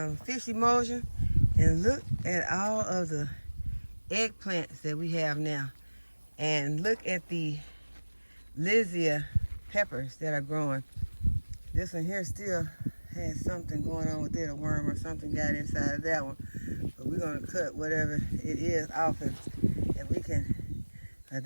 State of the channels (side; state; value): both; inverted; correlation -1.00